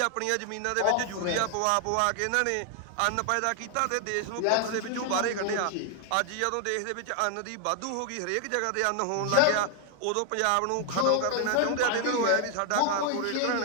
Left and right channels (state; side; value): different; both; correlation 0.00